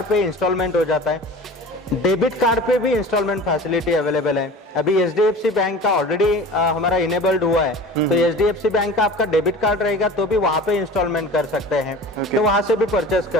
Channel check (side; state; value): both; normal; correlation 0.39